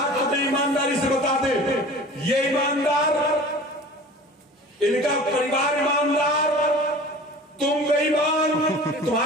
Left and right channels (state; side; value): normal; both; correlation 0.41